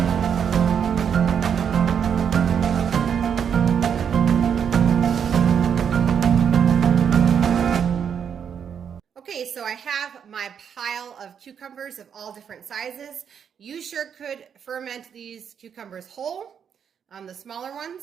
Okay, so I have my pile of cucumbers of all different sizes. You sure could ferment these cucumbers whole, the smaller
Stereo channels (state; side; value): quieter; left; 7.7 dB